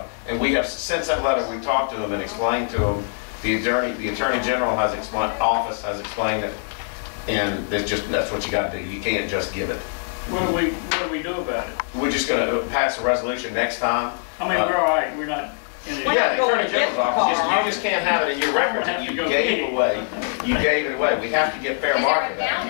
And we have, since that letter, we talked to them and explained to them, the Attorney General has explained, office has explained it, and that's what you got to do. You can't just give it. What do we do about it? We're just going to pass a resolution next time. I mean, we're all right. We're not. Yeah, the Attorney General's office. You just can't have it in your records that you gave away. You gave it away. We have to get fair market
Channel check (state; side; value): silent; right; digital silence